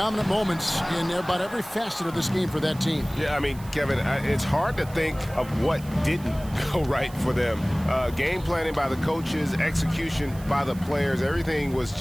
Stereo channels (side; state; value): right; noise; hiss, 20 dB below the sound